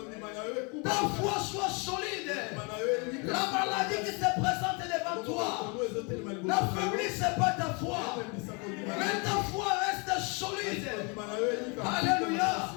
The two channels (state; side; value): quieter; right; 32.4 dB